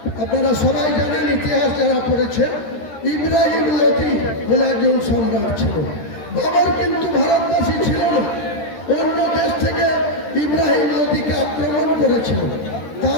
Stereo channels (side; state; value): right; late; 13 ms